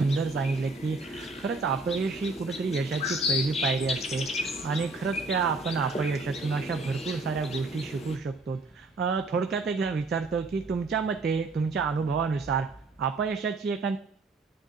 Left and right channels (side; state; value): left; quieter; 3.4 dB